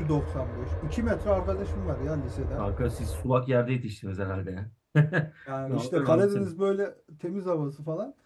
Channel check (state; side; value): identical; both; correlation 1.00